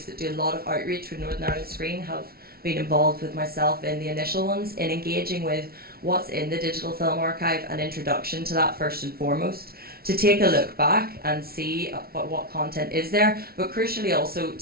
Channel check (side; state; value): left; late; 0.44 ms